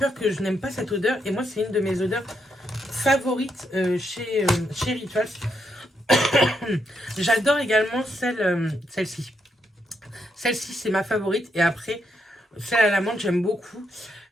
que je n'aime pas cette odeur. Et moi, c'est une de mes odeurs favorites chez Rituals. J'adore également celle-ci. Celle-ci, c'est ma favorite. Et après, celle à la menthe, j'aime beaucoup.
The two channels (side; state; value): both; normal; correlation 0.79